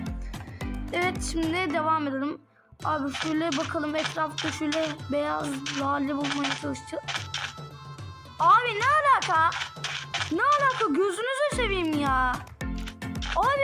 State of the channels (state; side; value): identical; both; correlation 1.00